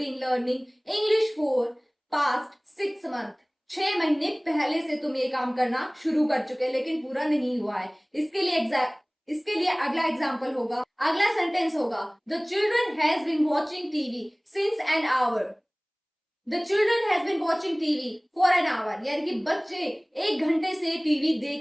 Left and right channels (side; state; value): both; identical; correlation 1.00